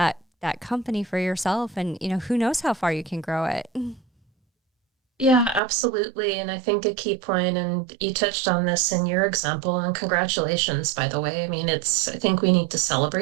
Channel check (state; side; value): drops out; left; at 5.6 s